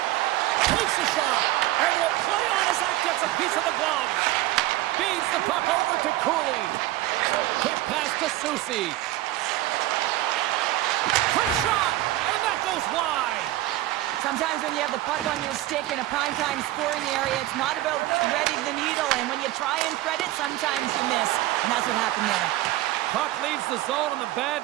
Takes a shot. And will play on as that gets a piece of the glove. Feeds the puck over to Cooley. Quick pass to Susi. Quick shot. And that goes wide. Sometimes when you have the puck on your stick in a primetime scoring area, it's not about threading the needle. And when you try and thread it, sometimes you miss. And that's what happened there. Puck leaves the zone on the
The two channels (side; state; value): left; quieter; 16.1 dB